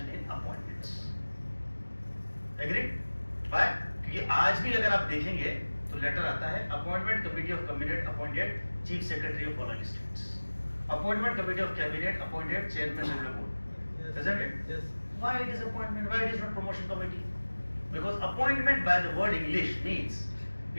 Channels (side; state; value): both; inverted; correlation -1.00